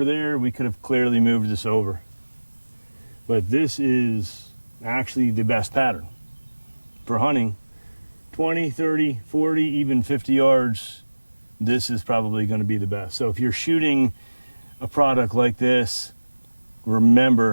there. We could have clearly moved this over. But this is actually the best pattern for hunting. 20, 30, 40, even 50 yards, this is probably going to be the best. So if you're shooting a product like this,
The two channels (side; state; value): both; inverted; correlation -1.00